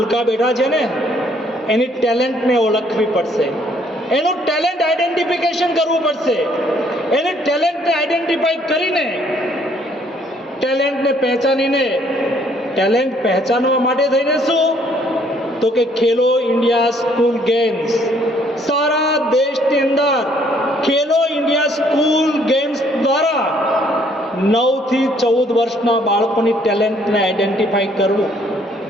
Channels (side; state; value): both; normal; correlation 0.64